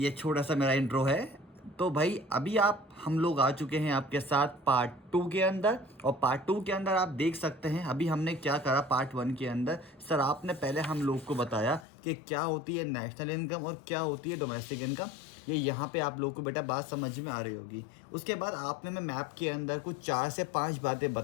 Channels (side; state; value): right; drops out; at 11.9 s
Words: छोटा सा मेरा intro है। तो भाई अभी आप हम लोग आ चुके हैं आपके साथ पार्ट 2 के अंदर, और पार्ट 2 के अंदर आप देख सकते हैं अभी हमने क्या करा। पार्ट 1 के अंदर सर आपने पहले हम लोग को बताया कि क्या होती है नेशनल इनकम और क्या होती है डोमेस्टिक इनकम। ये यहाँ पे आप लोग को बेटा बात समझ में आ रही होगी। उसके बाद आपने मैं मैप के अंदर कुछ 4 से 5 बातें